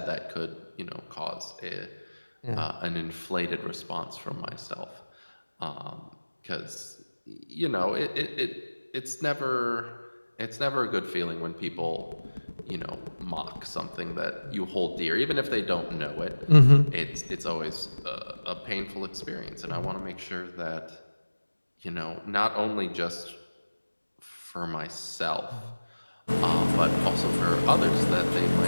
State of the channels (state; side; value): inverted; both; correlation -1.00